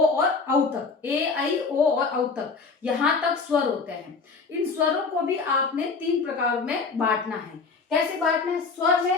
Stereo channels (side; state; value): right; quieter; 4.5 dB